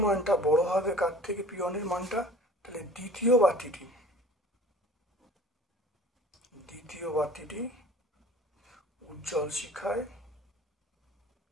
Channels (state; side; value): normal; both; correlation 0.46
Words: মানটা বড় হবে কার থেকে? P1 এর মানটা। তাহলে দ্বিতীয় বাতিটি উজ্জ্বল শিখায়